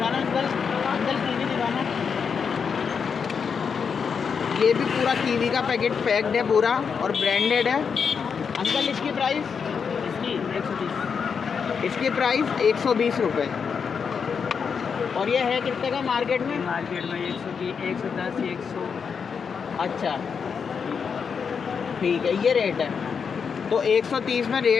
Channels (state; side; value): quieter; right; 6.2 dB